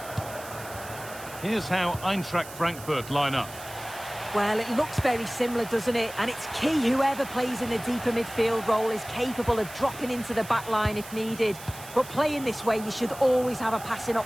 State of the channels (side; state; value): right; noise; hiss, 15 dB below the sound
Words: Here's how Eintracht Frankfurt line up. Well, it looks very similar, doesn't it? And it's key whoever plays in the deeper midfield role is capable of dropping into the back line if needed. But playing this way, you should always have a passing